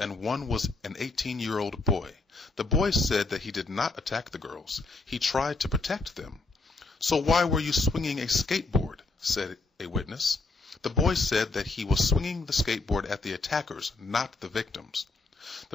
one was an 18-year-old boy. The boy said that he did not attack the girls. He tried to protect them. "So why were you swinging a skateboard?" said a witness. The boy said that he was swinging the skateboard at the attackers, not the victims.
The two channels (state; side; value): quieter; right; 3.6 dB